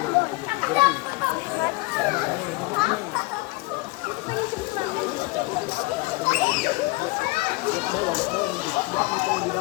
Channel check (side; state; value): right; quieter; 23.8 dB